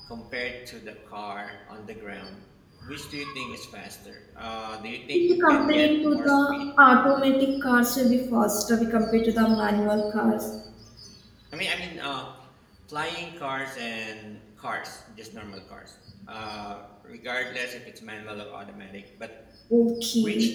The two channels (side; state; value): both; identical; correlation 1.00